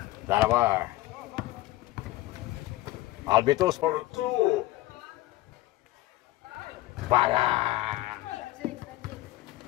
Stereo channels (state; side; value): quieter; right; 17.4 dB